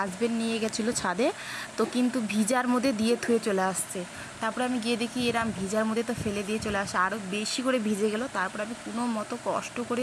নিয়ে গেছিলো ছাদে, তো কিন্তু ভিজার মধ্যে দিয়ে থুয়ে চলে আসছে। তারপরে আমি গিয়ে দেখি এরম ভিজার মধ্যে তো ফেলে দিয়ে চলে আসে, আরও বেশি করে ভিজে গেল। তারপর আমি কোনো মতো কষ্ট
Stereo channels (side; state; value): both; identical; correlation 1.00